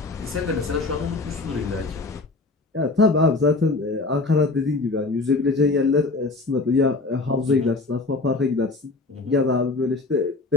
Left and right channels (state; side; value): quieter; right; 3.5 dB